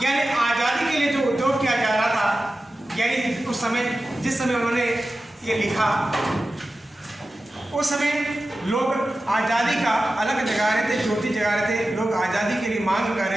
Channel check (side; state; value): both; normal; correlation 0.94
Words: यानी आज़ादी के लिए जो उद्योग किया जा रहा था, यानी उस समय जिस समय उन्होंने ये लिखा उस समय लोग आज़ादी का अलग जगा रहे थे, ज्योति जगा रहे थे, लोग आज़ादी के लिए मांग कर